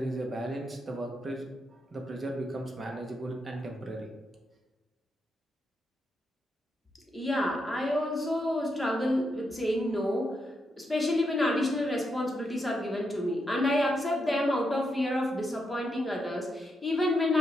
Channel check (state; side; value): normal; both; correlation 0.82